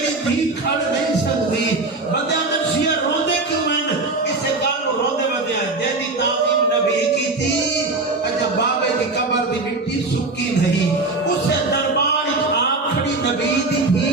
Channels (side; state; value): left; quieter; 3.4 dB